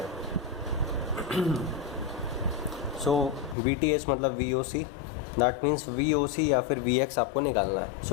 सो VTH मतलब VOC, दैट मीन्स VOC या फिर Vx आपको निकालना है।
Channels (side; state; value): right; drops out; at 3.6 s